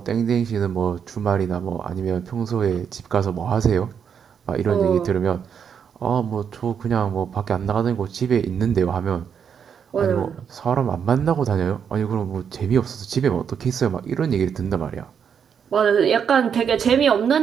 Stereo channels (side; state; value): left; quieter; 7.4 dB